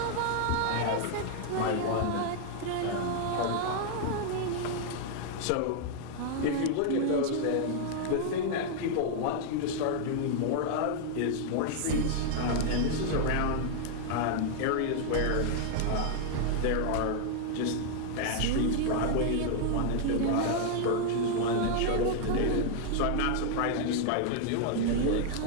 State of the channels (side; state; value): both; different; correlation 0.00